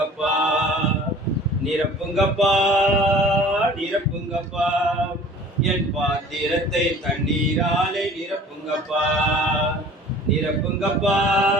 நிரப்புங்கப்பா நிரப்புங்கப்பா, என் பாத்திரத்தை தண்ணீராலே நிரப்புங்கப்பா. நிரப்புங்கப்பா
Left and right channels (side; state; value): both; normal; correlation 0.47